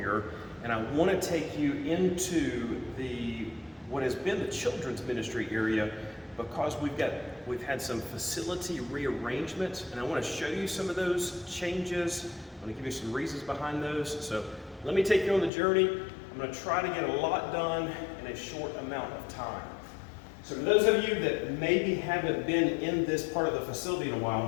and I want to take you into what has been the children's ministry area because we've had some facility rearrangements and I want to show you some of those changes. I'm going to give you some reasons behind those. So let me take you on the journey. I'm going to try to get a lot done in a short amount of time. So for those of you that maybe haven't been in this part of the facility in a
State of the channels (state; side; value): drops out; right; at 15.5 s